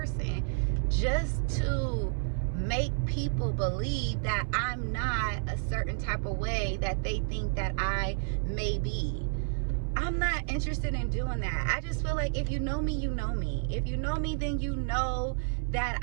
just to make people believe that I'm not a certain type of way that they think that I may be. I'm not interested in doing that. I just feel like if you know me, you know me. If you know me, then you know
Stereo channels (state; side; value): silent; left; 58 dB below the other